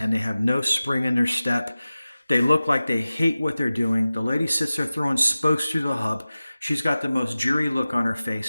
and they have no spring in their step. They look like they hate what they're doing. The lady sits there throwing spokes through the hub. She's got the most dreary look on her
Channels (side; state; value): both; inverted; correlation -0.96